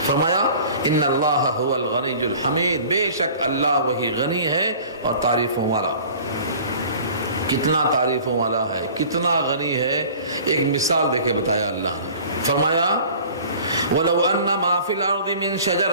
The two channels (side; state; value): both; inverted; correlation -0.46